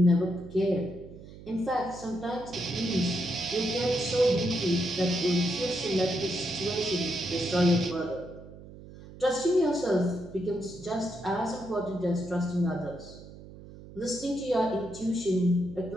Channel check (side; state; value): right; noise; hum, 17 dB below the sound